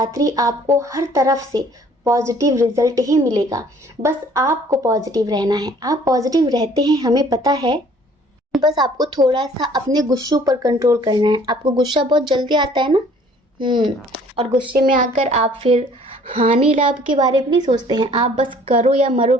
आपको हर तरफ से पॉजिटिव रिजल्ट ही मिलेगा। बस आपको पॉजिटिव रहना है। आप पॉजिटिव रहते हैं, हमें पता है। बस आपको थोड़ा सा अपने गुस्सों पर कंट्रोल करना है। आपको गुस्सा बहुत जल्दी आता है ना, और गुस्से में आकर आप फिर हानि लाभ के बारे में नहीं सोचते हैं, आप बस करो या मरो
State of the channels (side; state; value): both; normal; correlation 0.56